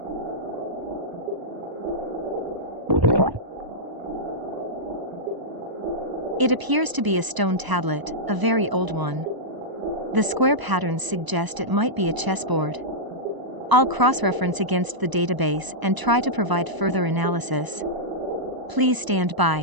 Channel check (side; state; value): left; late; 1.0 ms